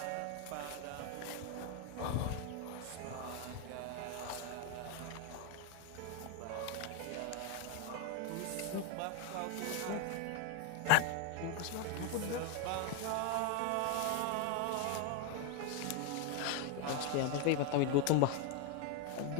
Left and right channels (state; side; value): different; both; correlation 0.01